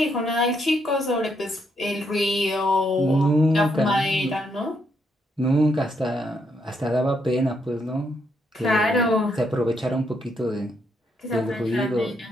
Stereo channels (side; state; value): both; normal; correlation 0.76